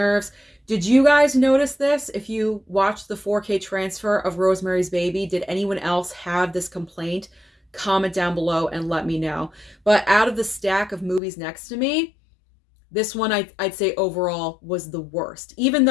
Did you guys notice this? If you watched the 4K transfer of Rosemary's Baby, did anyone else have this complaint? Comment down below and let me know. But out of the stack of movies next to me, this one I'd say overall was the worst. Even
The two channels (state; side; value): drops out; right; at 11.2 s